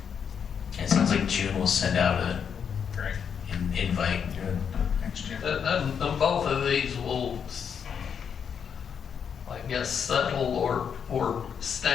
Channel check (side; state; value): right; quieter; 7.3 dB